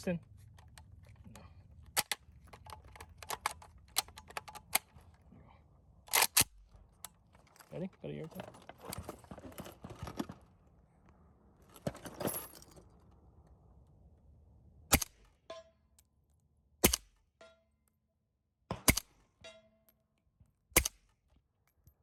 Ready? Got a airtime.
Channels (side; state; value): both; identical; correlation 1.00